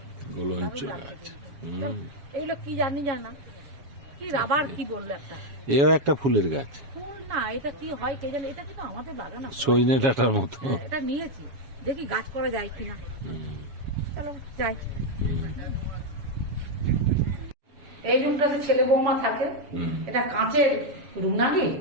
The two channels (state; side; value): late; left; 7.2 ms